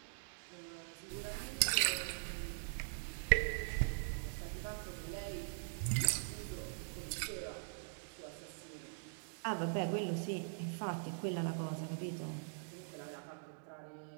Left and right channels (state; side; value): silent; left; digital silence